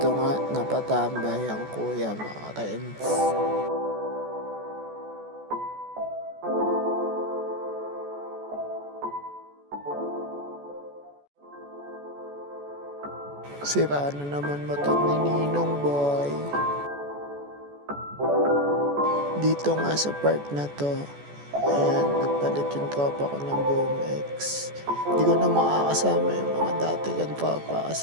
nga, napatambay ang kuya, mga friends. Sira na naman motor ni Ninong Boy. Dito nga sa park na to, ayan, nagpalit yung tropa ko ng BMX. Hindi ko na makakasama yung mga dati kang tropa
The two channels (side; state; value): left; late; 14 ms